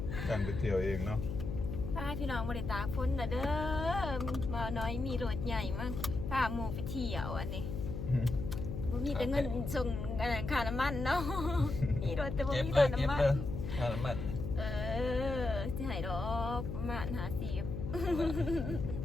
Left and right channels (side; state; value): left; noise; hum, 5 dB below the sound